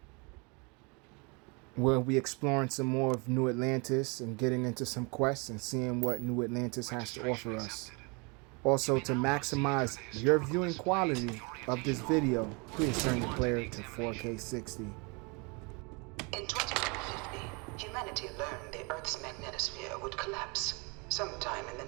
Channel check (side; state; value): left; quieter; 30.6 dB